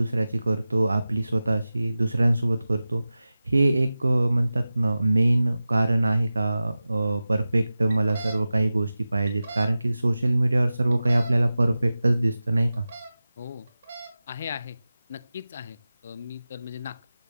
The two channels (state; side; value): inverted; both; correlation -0.95